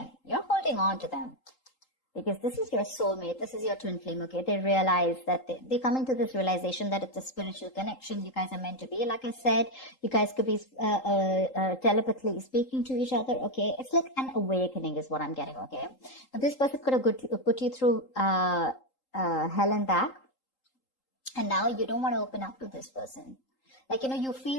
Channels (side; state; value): right; late; 3.8 ms